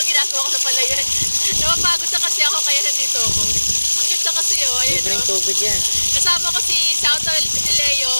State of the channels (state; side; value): inverted; both; correlation -1.00